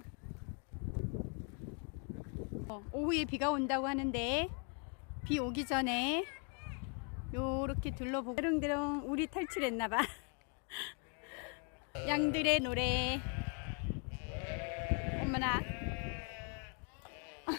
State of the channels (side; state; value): right; quieter; 39.5 dB